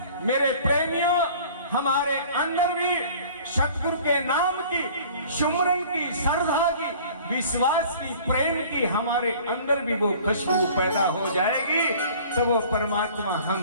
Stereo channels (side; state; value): both; inverted; correlation -0.48